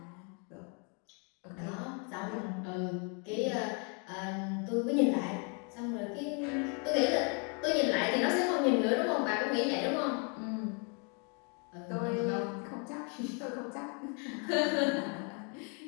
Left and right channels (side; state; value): right; quieter; 36.8 dB